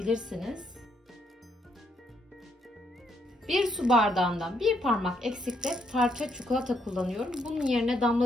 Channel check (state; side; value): normal; both; correlation 0.74